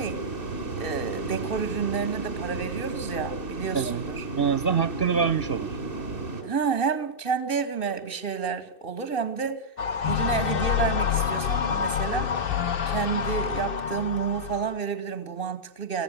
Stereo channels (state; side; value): late; right; 2.6 ms